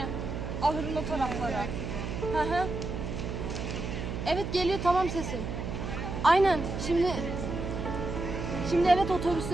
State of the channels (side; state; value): right; noise; hum, 5 dB below the sound